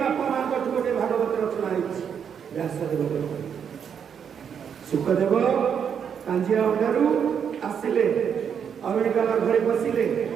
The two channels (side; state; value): left; quieter; 7.6 dB